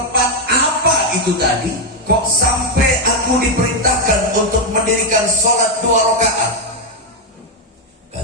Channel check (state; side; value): normal; both; correlation 0.04